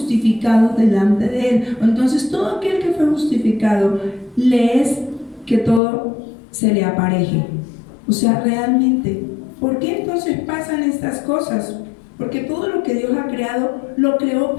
delante de Él. Entonces todo aquel que fue justificado le es que todo se le apareje. O sea, realmente, ¿por qué entonces pasan estas cosas? Porque todo lo que Dios ha creado, lo creó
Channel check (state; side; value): drops out; right; at 5.8 s